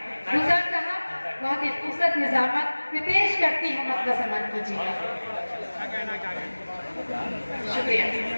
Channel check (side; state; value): both; inverted; correlation -1.00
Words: गुलजार साहब बहुत ही खूबसूरत निजामत में पेश करती हूँ, मतलब सम्मान कीजिएगा। शुक्रिया